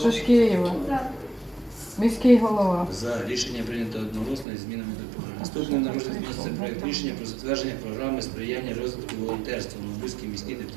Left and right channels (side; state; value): left; drops out; at 4.5 s